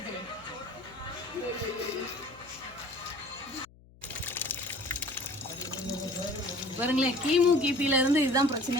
பாருங்களேன், கிமு கிபில இருந்து இதுதான்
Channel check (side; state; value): left; noise; hum, 25 dB below the sound